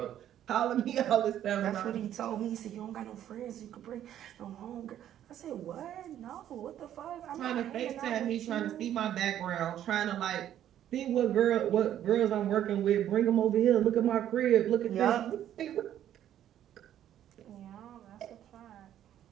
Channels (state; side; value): quieter; left; 11.1 dB